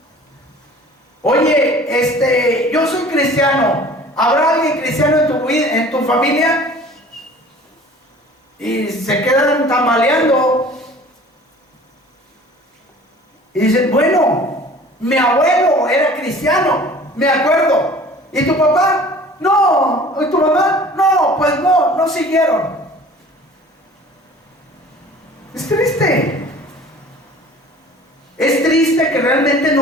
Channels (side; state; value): both; normal; correlation 0.46